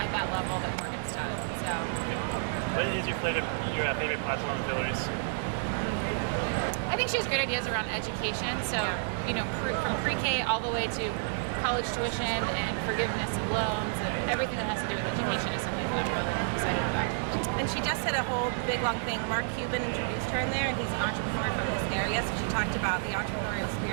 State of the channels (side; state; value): left; silent; digital silence